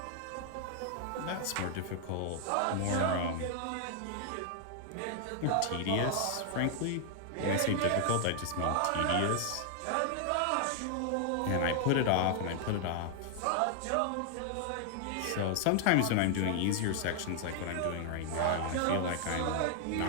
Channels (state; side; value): different; both; correlation 0.00